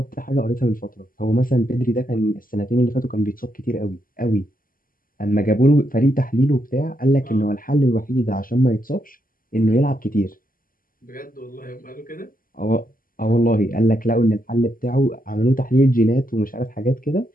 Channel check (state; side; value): late; right; 0.41 ms